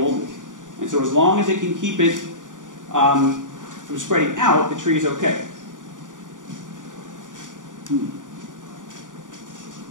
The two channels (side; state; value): left; late; 0.87 ms